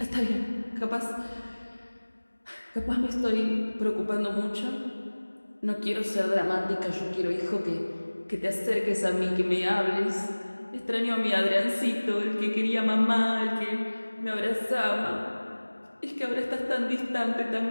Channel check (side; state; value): both; inverted; correlation -1.00